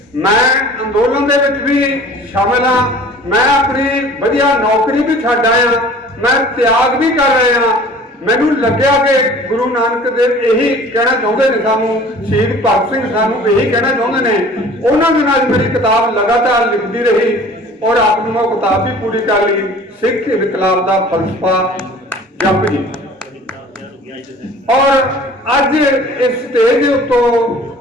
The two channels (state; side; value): normal; both; correlation 0.47